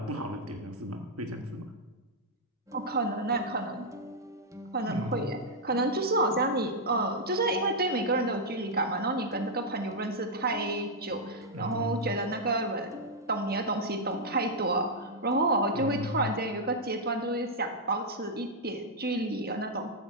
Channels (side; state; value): both; normal; correlation -0.04